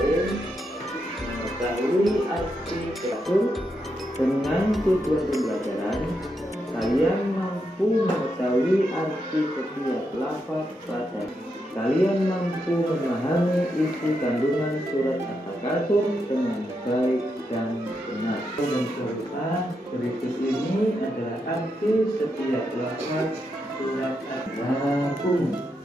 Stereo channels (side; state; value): both; normal; correlation 0.83